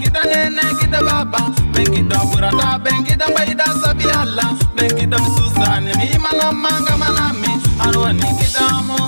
nene Guido baba. Ben Guido burata, ben Guido waida sabiala. Ben Guido misusane himana manga manami. Aroni Guidamo,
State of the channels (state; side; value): inverted; both; correlation -1.00